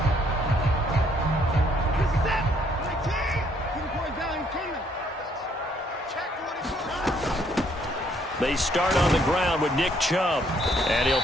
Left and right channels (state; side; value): normal; both; correlation 0.67